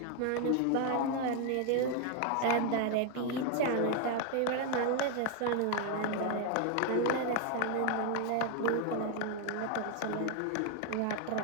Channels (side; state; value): both; different; correlation 0.01